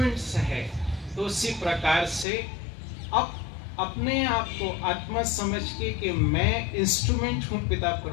है, तो उसी प्रकार से अब अपने आप को आत्मा समझ के कि मैं इंस्ट्रूमेंट हूं पिता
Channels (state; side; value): drops out; right; at 2.2 s